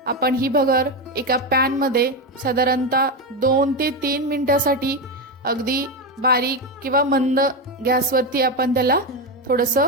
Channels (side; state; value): both; normal; correlation 0.12